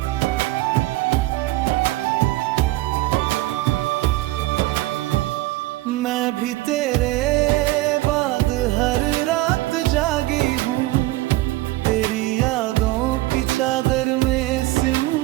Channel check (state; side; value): quieter; left; 18.5 dB